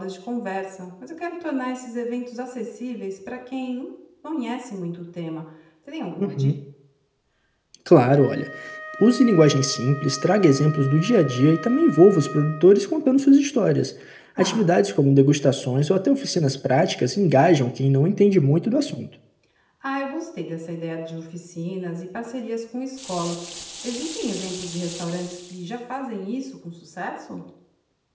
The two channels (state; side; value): identical; both; correlation 1.00